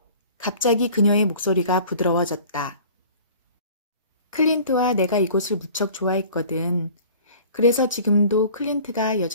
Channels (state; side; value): inverted; both; correlation -0.47